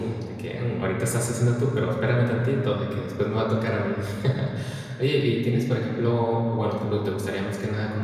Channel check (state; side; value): identical; both; correlation 1.00